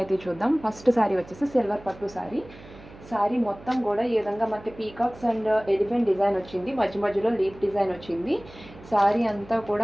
అయితే చూద్దాం. ఫస్ట్ సారీ వచ్చేసి సిల్వర్ పట్టు సారీ. సారీ మొత్తం కూడా ఈ విధంగా మనకి పీకాక్స్ అండ్ ఎలిఫెంట్ డిజైన్ వచ్చింది, మధ్య మధ్యలో లీఫ్ డిజైన్ వచ్చింది. సారీ అంతా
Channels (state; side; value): noise; right; hum, 19 dB below the sound